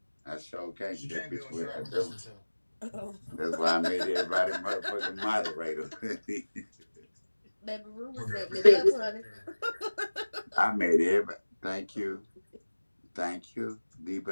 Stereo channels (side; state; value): both; inverted; correlation -1.00